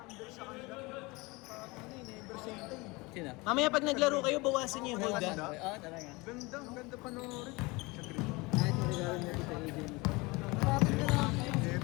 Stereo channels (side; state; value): right; quieter; 24.5 dB